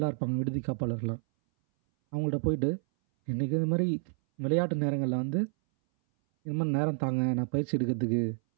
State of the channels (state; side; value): silent; left; 58 dB below the other